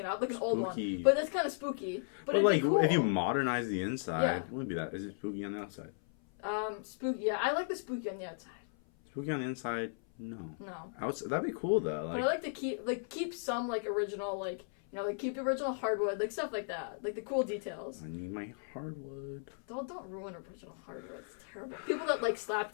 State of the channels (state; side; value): silent; right; 54 dB below the other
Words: up, like an old one. But that's kind of spooky. But it'd like, be cool. If you modernize the inside, it wouldn't be that. Is it spooky on the outside? Spooky, yeah. I like the spooky on the outside. Spooky on the inside? No. No. That'd be cool, though. Like, but I like to keep some, like, original, like, you know, like, keep the original hardwood, like, stuff like that. Like, the cool details. I need my hardwood. Don't ruin original hardwood. It's terrible. People that, like, slap